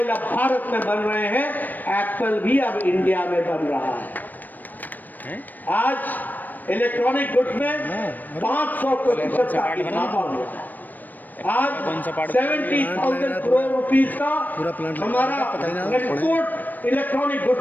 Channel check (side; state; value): right; late; 0.087 ms